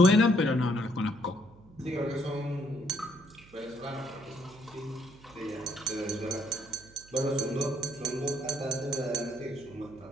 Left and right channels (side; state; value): right; noise; hum, 24 dB below the sound